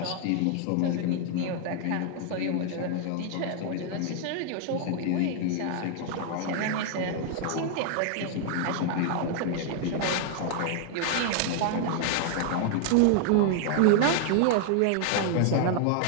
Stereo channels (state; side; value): different; both; correlation 0.00